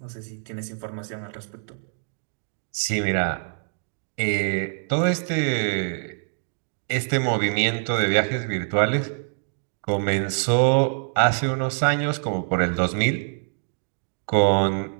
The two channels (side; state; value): left; silent; digital silence